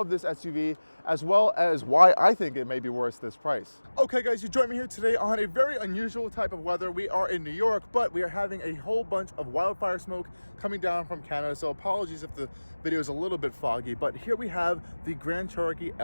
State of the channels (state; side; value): inverted; both; correlation -1.00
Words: this SUV, as well as why I think it may be worth this price. Okay guys, you joined me here today on a very unusual type of weather. We are in New York, but we are having a whole bunch of wildfire smoke coming down from Canada, so apologies if the video is a little bit foggy, but here we have the Grand Cherokee